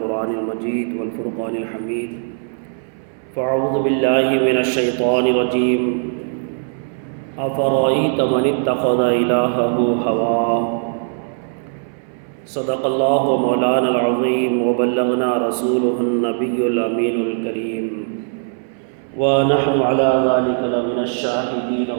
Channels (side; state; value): left; silent; 63 dB below the other